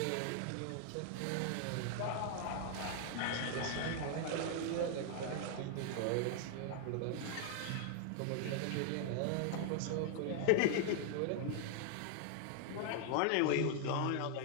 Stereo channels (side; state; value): both; different; correlation 0.00